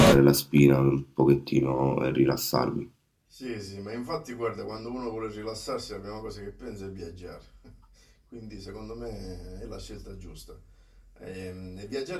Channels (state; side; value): identical; both; correlation 1.00